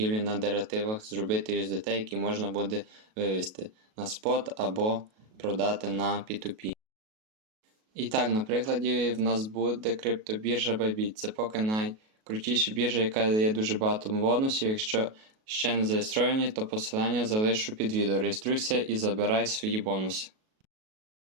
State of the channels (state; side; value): late; left; 37 ms